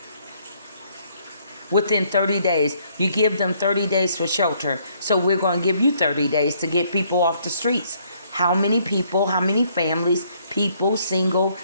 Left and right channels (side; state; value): both; inverted; correlation -0.67